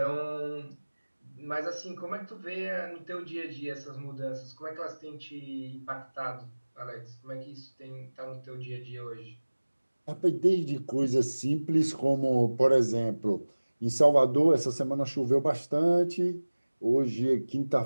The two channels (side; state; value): both; inverted; correlation -1.00